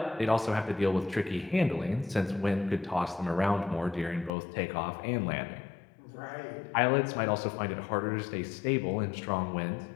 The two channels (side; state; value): right; drops out; at 4.3 s